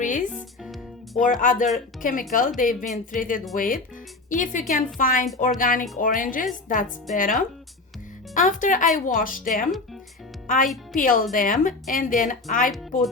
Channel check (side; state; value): right; quieter; 3.4 dB